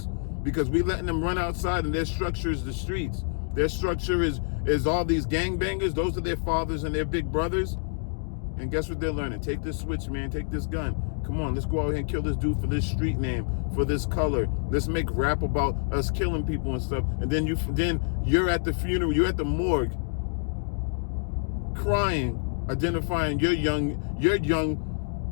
because we letting them run outside and their structure is the streets. Their structure is all these gangbangers. Those are their fathers and their big brothers. And guess what they're learning? Take this switch, man. Take this gun. Come on, let's go out here and kill this dude for this street name, for this color. Let's make rap about us killing people and stuff. And then you're at the funeral, you're at the morgue, crying, identifying your young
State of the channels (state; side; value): silent; right; digital silence